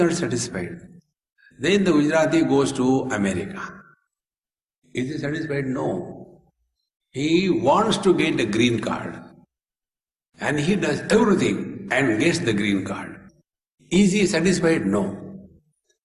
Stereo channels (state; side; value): identical; both; correlation 1.00